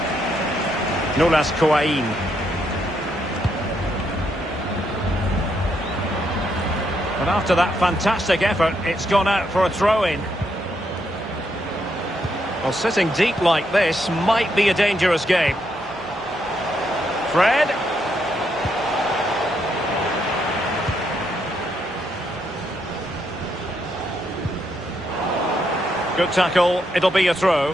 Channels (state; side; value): normal; both; correlation 0.77